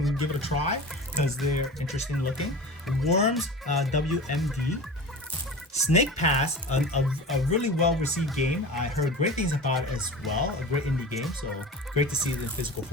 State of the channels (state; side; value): normal; both; correlation 0.33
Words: give it a try because they're interesting looking. Worms WMD. Snake Pass, a really well received game. I heard great things about it as well. A great indie game, so great to see it in physical